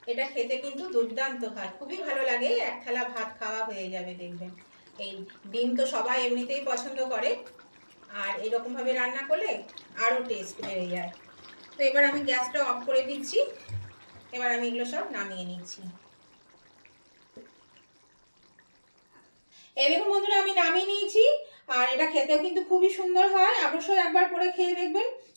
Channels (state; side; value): inverted; both; correlation -1.00